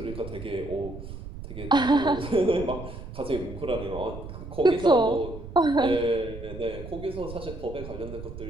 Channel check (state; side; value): noise; right; rumble, 11 dB below the sound